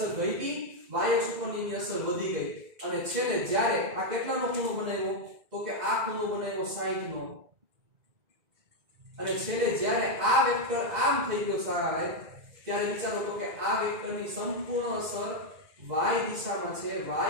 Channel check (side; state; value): left; late; 2.0 ms